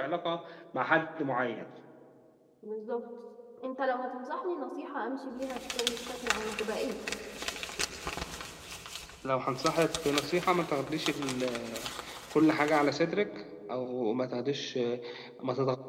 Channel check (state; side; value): identical; both; correlation 1.00